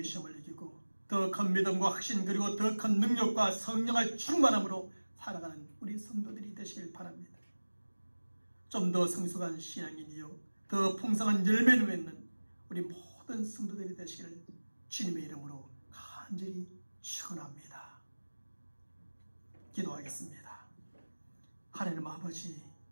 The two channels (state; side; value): inverted; both; correlation -1.00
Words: 시험을 이기고 더 큰 믿음과 확신 그리고 더 큰 능력과 성령의 충만함으로 살아가는 우리 성도들이 되시길 바랍니다. 좀 더 성숙한 신앙인이요 더 풍성한 열매를 맺는 우리 모든 성도들이 되시기를 주님의 이름으로 간절히 축원합니다. 기도하겠습니다. 하나님 아버지,